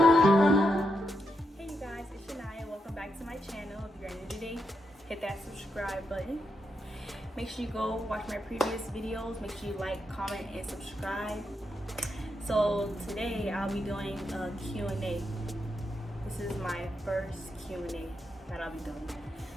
Hit that subscribe button. Make sure you go watch my previous videos. Make sure you like, comment, and subscribe. So today I'll be doing a Q&A. This is my first Q&A that I'll be doing.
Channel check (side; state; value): both; normal; correlation 0.83